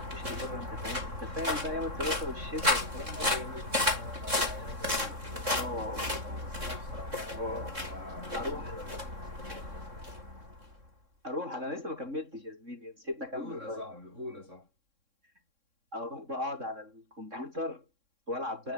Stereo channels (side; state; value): left; late; 3.6 ms